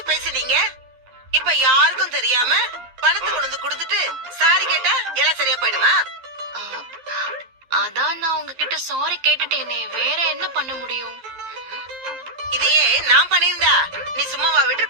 பேசினீங்க. இப்ப யாருக்கும் தெரியாம பணத்தை கொண்டு வந்து கொடுத்துட்டு சாரி கேட்டா எல்லாம் சரியா போயிடுமா? அதான் நான் உங்ககிட்ட சாரி கேட்டுட்டேனே, வேற என்ன பண்ண முடியும்? இதையே நான் பண்ணியிருந்தா நீ சும்மாவா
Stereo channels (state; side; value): late; left; 11 ms